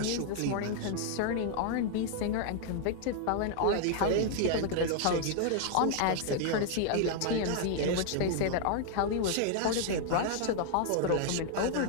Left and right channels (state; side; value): different; both; correlation 0.00